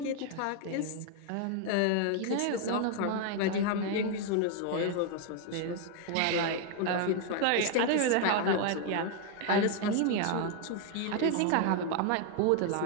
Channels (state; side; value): different; both; correlation 0.00